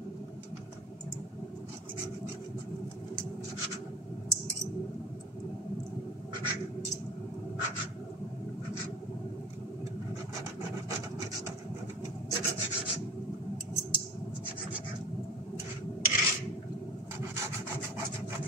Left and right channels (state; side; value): normal; both; correlation 0.39